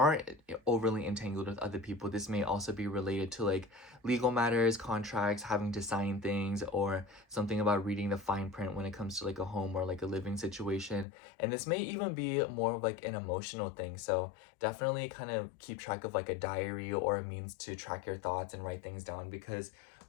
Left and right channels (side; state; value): right; drops out; at 11.1 s